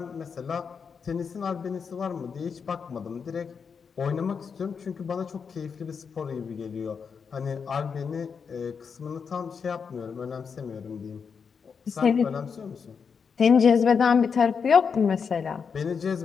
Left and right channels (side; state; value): right; quieter; 6.1 dB